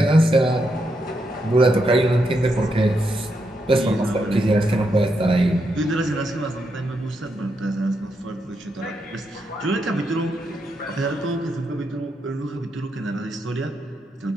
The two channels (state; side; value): normal; both; correlation 0.82